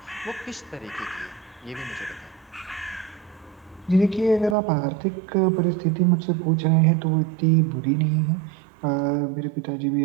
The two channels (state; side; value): drops out; left; at 4.5 s